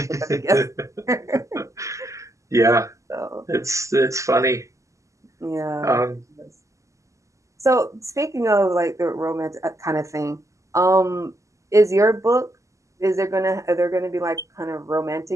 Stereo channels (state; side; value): late; left; 0.15 ms